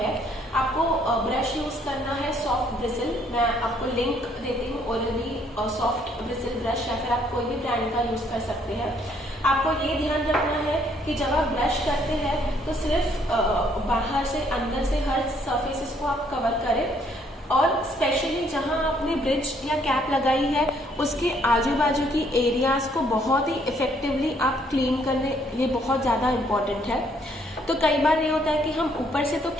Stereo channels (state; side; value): normal; both; correlation 0.67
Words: आपको ब्रश यूज करना है सॉफ्ट ब्रिसल, मैं आपको लिंक देती हूँ, ओरल-बी सॉफ्ट ब्रिसल ब्रश, या फिर आप कोई भी ब्रांड का यूज कर सकते हैं। आपको ये ध्यान रखना है कि जब आप ब्रश करते हैं तो सिर्फ बाहर से अंदर से हर सरफेसेस को आप कवर करें, और स्पेशली जहां आपने ब्रिज या कैप लगाई है उसके आजू बाजू की एरियाज को बहुत ही इफेक्टिवली आप क्लीन करने, ये बहुत ज़्यादा इम्पोर्टेंट है। तो कई बार ये होता है कि हम ऊपर से तो